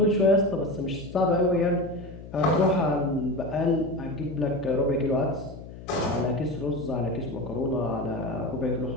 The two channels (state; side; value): noise; left; hum, 14 dB below the sound